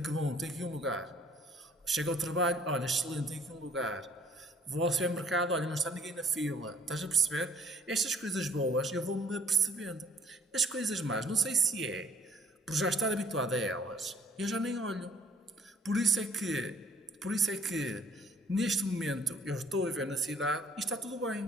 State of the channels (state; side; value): normal; both; correlation 0.58